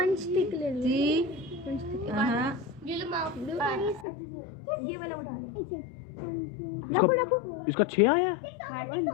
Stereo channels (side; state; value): right; drops out; at 4.0 s